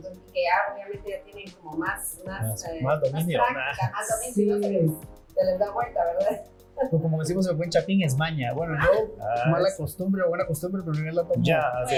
que ya obviamente ya tienen como más dominio. práctica, más dominio, Sí. se les da vuelta, ¿verdad? O como decimos el buen chapín, es maña. Bueno, yo, mala costumbre o buena costumbre, pero yo la tomo. Ya, Bueno, sí,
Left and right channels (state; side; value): identical; both; correlation 1.00